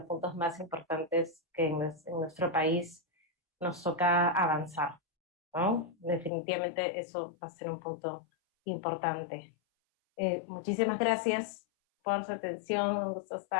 puntos más importantes que en nuestro país nos toca avanzar, ¿no? Definitivamente eso va a ser un punto importante. Muchísimas gracias por su atención, un gusto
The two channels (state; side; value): drops out; right; at 6.3 s